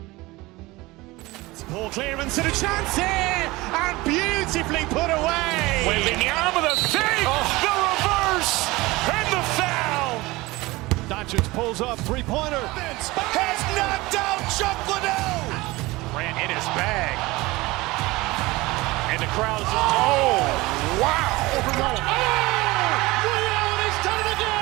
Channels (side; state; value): left; quieter; 20.9 dB